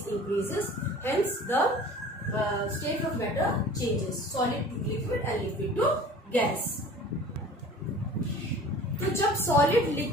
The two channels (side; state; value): both; normal; correlation 0.44